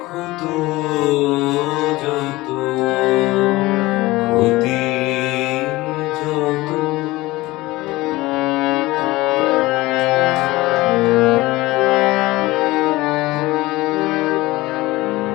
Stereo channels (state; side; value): quieter; right; 19.6 dB